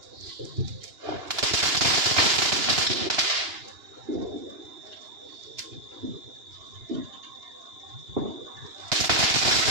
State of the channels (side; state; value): left; late; 2.9 ms